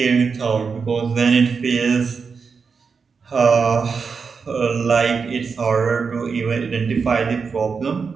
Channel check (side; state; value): left; quieter; 5.4 dB